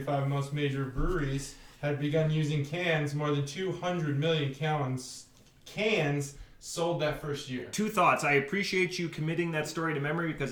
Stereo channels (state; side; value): identical; both; correlation 1.00